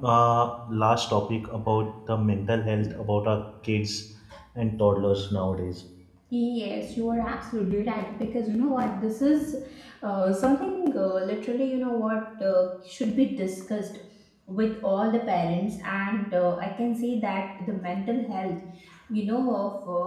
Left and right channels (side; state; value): both; identical; correlation 1.00